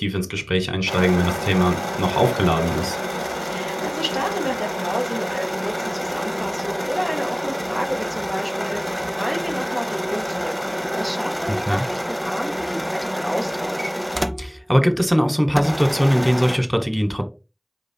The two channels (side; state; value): both; identical; correlation 1.00